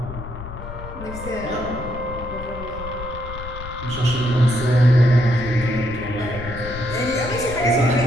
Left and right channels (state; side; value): noise; left; rumble, 11 dB below the sound